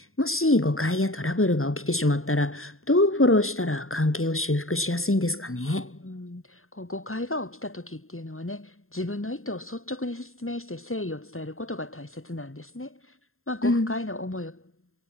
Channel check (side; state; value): right; late; 0.61 ms